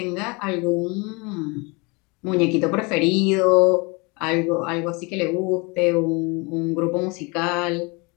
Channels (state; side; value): quieter; right; 28.6 dB